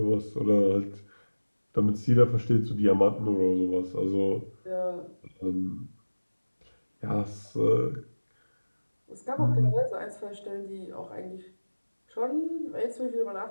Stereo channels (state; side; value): inverted; both; correlation -1.00